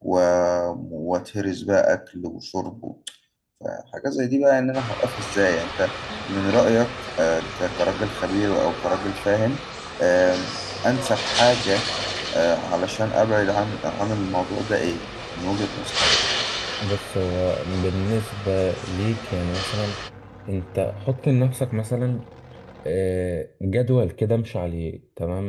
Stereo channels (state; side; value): identical; both; correlation 1.00